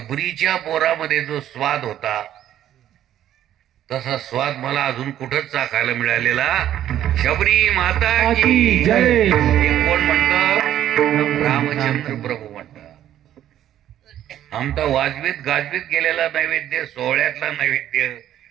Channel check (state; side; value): quieter; left; 11.6 dB